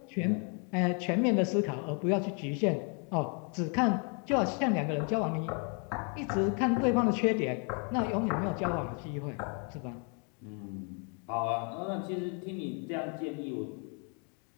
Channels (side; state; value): right; quieter; 38.2 dB